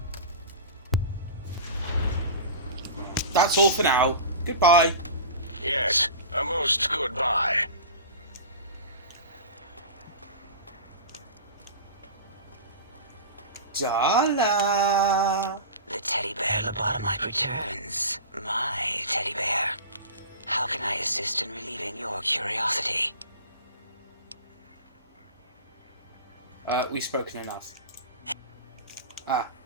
That's all for now. Goodbye. Yes, a most goodbye. Dala. The teddy bear lobotomite returns. My teddy bear. How can I assist in relieving your curiosity? We've spoken enough.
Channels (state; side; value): inverted; both; correlation -0.33